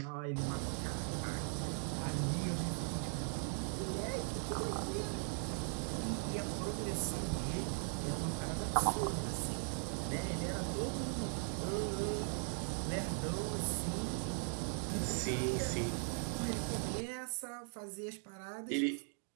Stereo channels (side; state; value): left; silent; 52 dB below the other